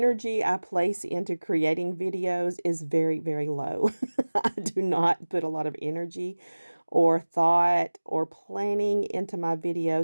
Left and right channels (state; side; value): inverted; both; correlation -1.00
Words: I place into creating videos is very, very low. I do not put a lot of energy or thought or planning into my